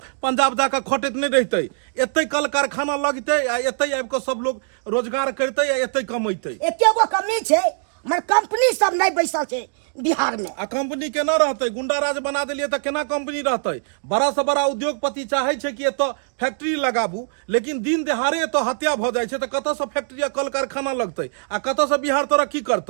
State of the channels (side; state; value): left; silent; digital silence